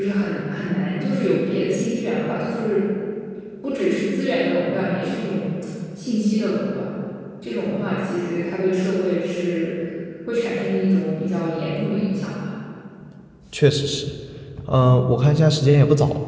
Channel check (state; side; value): identical; both; correlation 1.00